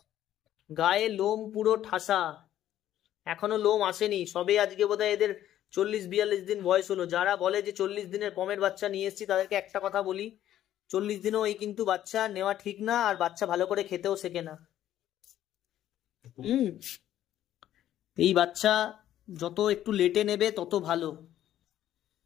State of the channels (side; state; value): right; quieter; 12.1 dB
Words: গায়ে লোম পুরো ঠাসা, এখনো লোম আসেনি, সবে আজকে বোধহয় এদের 40-42 দিন বয়স হলো। যারা বলে যে 40 দিনের পমের বাচ্চা নিয়ে এসেছি, তাদেরকে একটা কথা বলি, 40 দিনও এই কিন্তু বাচ্চা নেওয়া ঠিক না, আর বাচ্চা ভালো করে খেতেও শেখে না। এই বাচ্চা যত একটু লেটে নেবে তত ভালো,